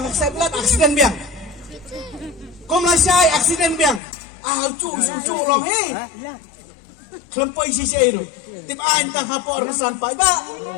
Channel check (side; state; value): right; drops out; at 4.0 s